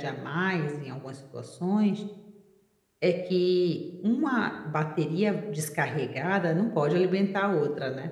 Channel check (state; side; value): identical; both; correlation 1.00